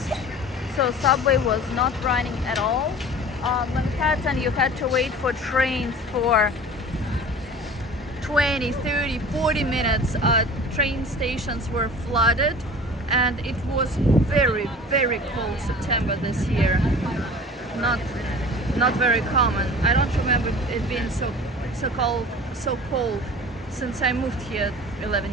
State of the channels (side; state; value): both; normal; correlation 0.41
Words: so subway was not running at all. Manhattan, you had to wait for trains for 20, 30, 40 minutes. Train stations were flooded, and it was very, very cold September this year. Not very common. I don't remember it being so cold since I moved here